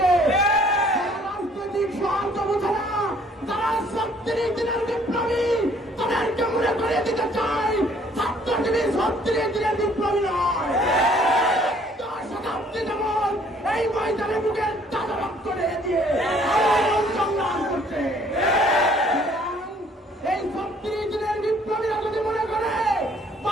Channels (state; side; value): normal; both; correlation 0.60